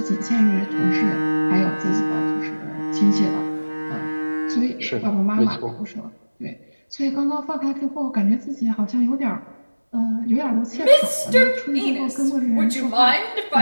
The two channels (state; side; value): inverted; both; correlation -1.00